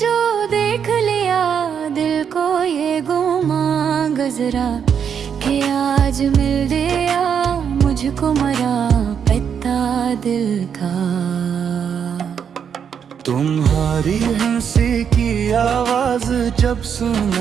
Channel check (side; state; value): left; quieter; 7.6 dB